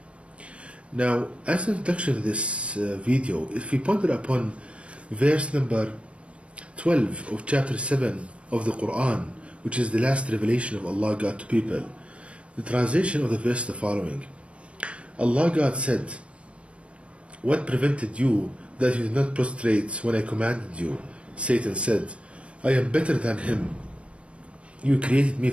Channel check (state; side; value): late; left; 0.061 ms